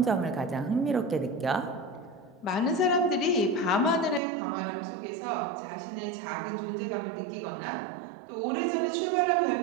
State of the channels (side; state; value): left; drops out; at 4.2 s